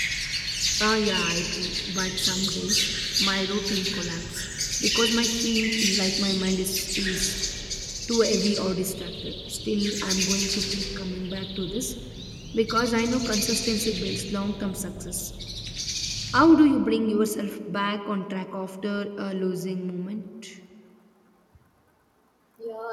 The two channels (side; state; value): both; identical; correlation 1.00